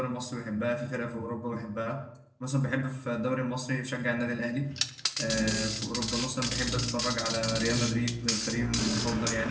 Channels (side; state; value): both; identical; correlation 1.00